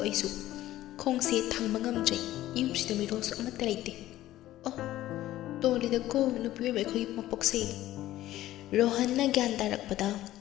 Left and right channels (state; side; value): quieter; right; 14.7 dB